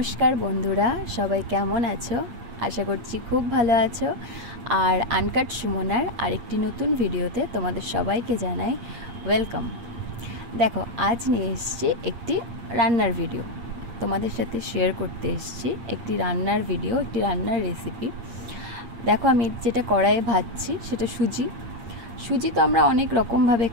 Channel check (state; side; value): late; left; 8.7 ms